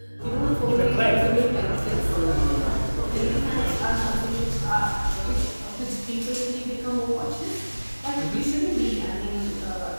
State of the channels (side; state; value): both; inverted; correlation -1.00